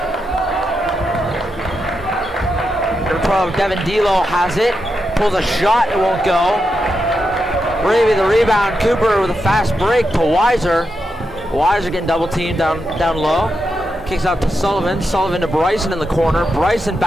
Number 12, Devin Delo has it. Pulls a shot, it won't go. Ravy the rebound. Cooper with a fast break to Weiser. Weiser getting double teamed down low. Kicks out to Sullivan. Sullivan to Bryson in the corner. Bryson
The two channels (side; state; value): both; normal; correlation 0.86